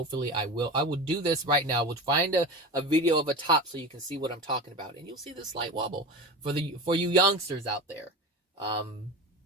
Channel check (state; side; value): normal; both; correlation 0.28